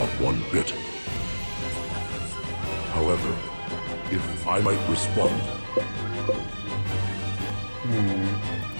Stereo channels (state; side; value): inverted; both; correlation -1.00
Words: one bit. However, if I might respond...